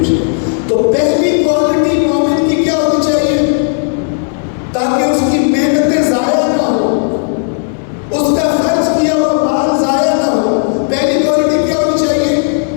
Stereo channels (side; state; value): right; silent; digital silence